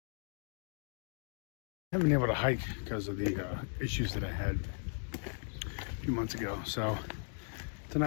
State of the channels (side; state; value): right; silent; 53 dB below the other